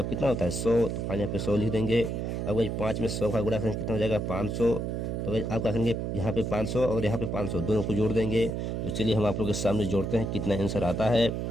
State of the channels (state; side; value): noise; right; hum, 2 dB below the sound